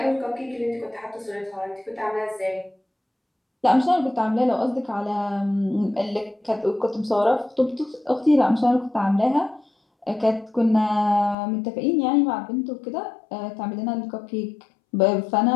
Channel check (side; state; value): right; drops out; at 11.4 s